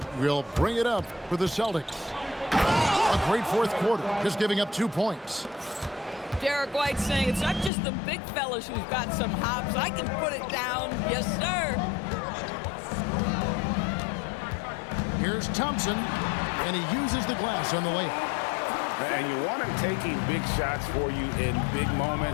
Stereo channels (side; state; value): right; drops out; at 7.7 s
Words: will bring it up for the Celtics. A great fourth quarter, just giving up 2 points. Derek White saying it's not just the big fellas who've got some hops. I can put it down. Yes, sir. Here's Thompson, and he uses the glass on the layup. And you want him taking big shots for you in big